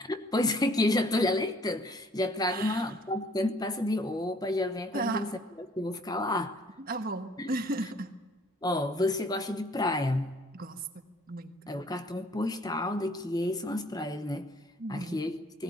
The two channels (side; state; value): both; normal; correlation 0.58